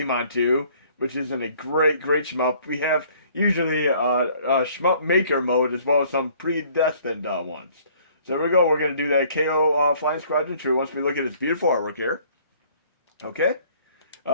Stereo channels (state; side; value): inverted; both; correlation -0.58